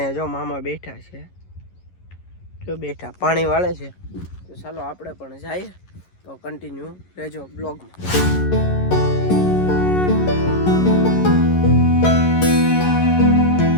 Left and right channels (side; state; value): right; late; 11 ms